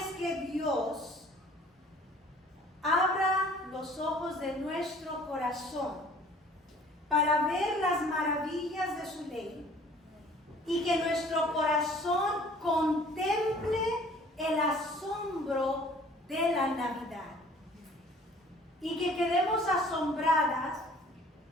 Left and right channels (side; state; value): both; normal; correlation 0.53